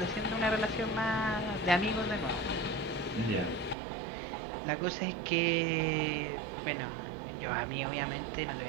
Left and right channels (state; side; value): drops out; left; at 3.8 s